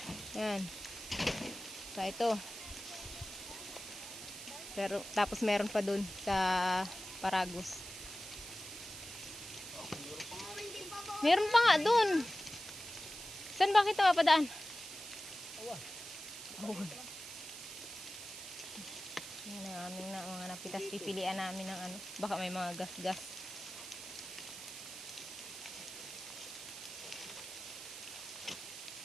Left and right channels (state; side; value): noise; right; hiss, 10 dB below the sound